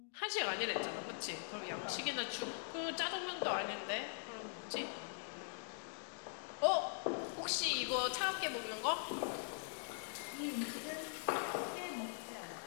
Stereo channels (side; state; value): right; silent; digital silence